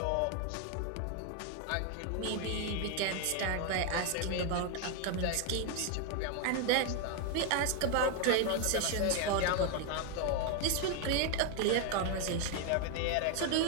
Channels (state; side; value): different; both; correlation 0.01